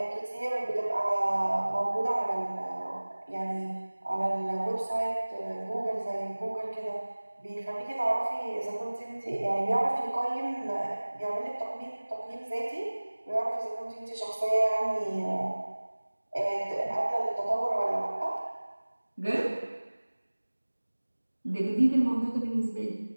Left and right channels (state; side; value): inverted; both; correlation -1.00